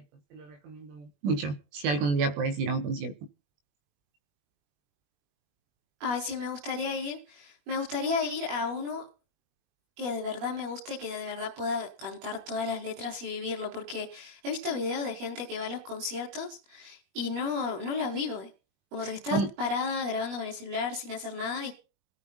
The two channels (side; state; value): left; late; 21 ms